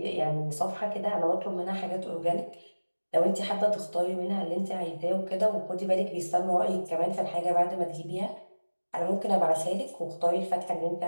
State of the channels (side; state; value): both; inverted; correlation -1.00